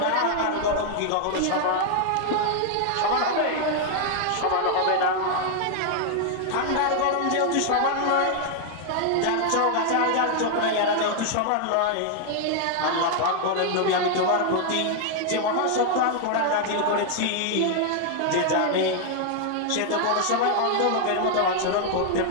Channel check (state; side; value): different; both; correlation 0.00